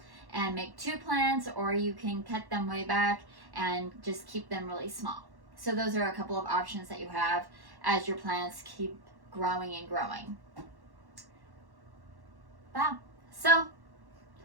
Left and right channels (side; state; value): left; late; 1.1 ms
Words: and make 2 plants, or you can cut them way back and just keep them really small. So those are a couple of options that you have as your plants keep growing and growing. Wow. So